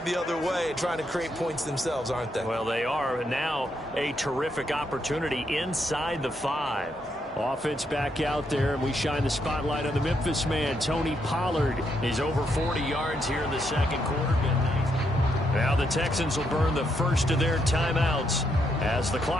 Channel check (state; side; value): normal; both; correlation 0.78